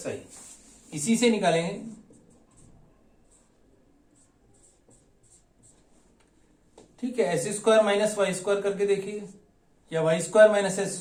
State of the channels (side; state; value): both; identical; correlation 1.00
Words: इसी से निकालेंगे। ठीक है, s square minus y square करके देखिए, या y square minus s